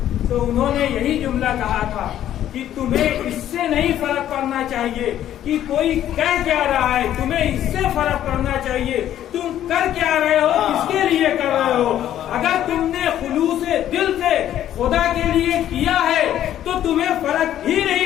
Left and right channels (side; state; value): right; quieter; 11.6 dB